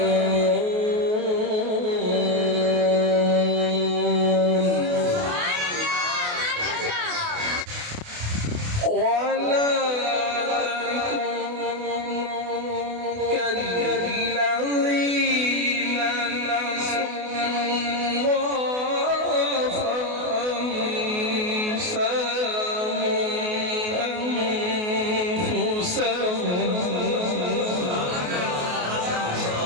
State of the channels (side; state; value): left; late; 28 ms